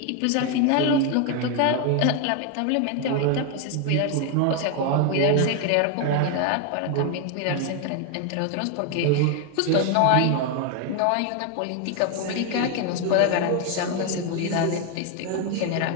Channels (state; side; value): different; both; correlation 0.01